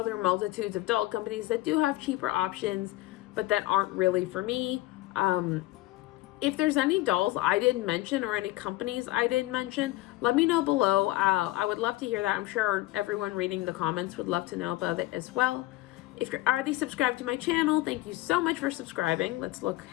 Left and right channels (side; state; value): right; quieter; 18.2 dB